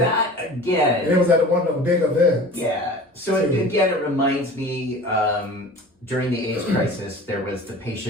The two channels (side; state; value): both; normal; correlation 0.40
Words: again... It was at one of the big events. Yeah. So, again, it reminds me, during the AIDS crisis, there was the